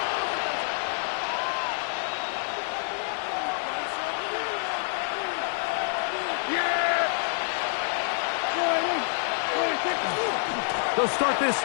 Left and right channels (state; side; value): silent; right; 60 dB below the other